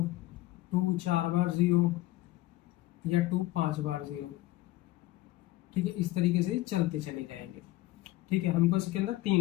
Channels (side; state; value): right; quieter; 16.9 dB